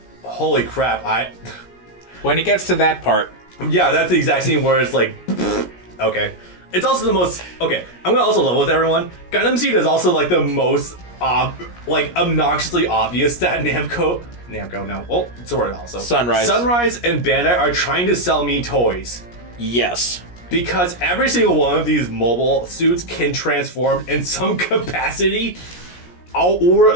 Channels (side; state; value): right; late; 17 ms